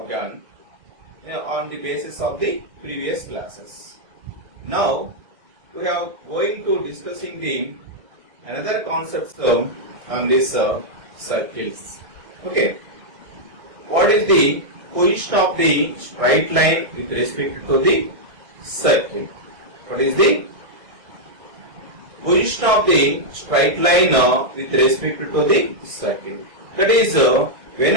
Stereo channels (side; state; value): left; late; 1.6 ms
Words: done on the basis of the previous classes. Now we are going to discussing the another concepts on this circles. Okay, what is the position of the straight line with respect to the circle? What is the position of the straight line with respect to the circle? That is,